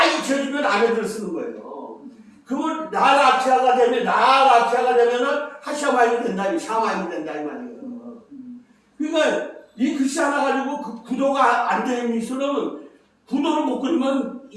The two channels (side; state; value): both; identical; correlation 1.00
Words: 잊혀지면 아래들을 쓰는 거예요. 그러면 나라키아가 되면은 하샤마임이 된다, 샤마임이 된다 이 말이에요. 그러니까 이 글씨 하나 가지고 그 구도가 안 되는 미술은 구도를 못 그리면